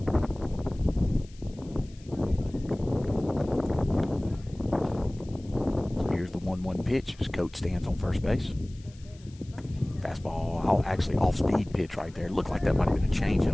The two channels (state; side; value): noise; left; hiss, 26 dB below the sound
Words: Pitch as Coates stands on first base. Fastball, actually off-speed pitch right there. Looked like that might have been a